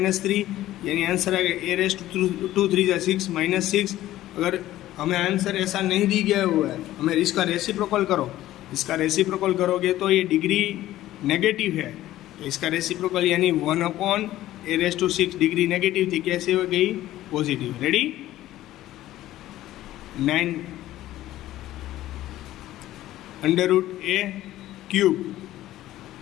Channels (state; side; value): quieter; right; 14.5 dB